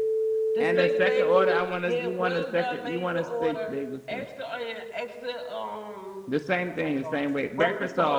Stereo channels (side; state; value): both; identical; correlation 1.00